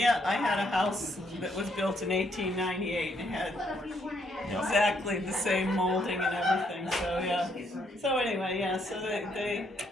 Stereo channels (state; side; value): normal; both; correlation 0.72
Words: I had a house that was built in 1898 and it had exactly the same molding and everything. So yeah. So anyway, yeah. So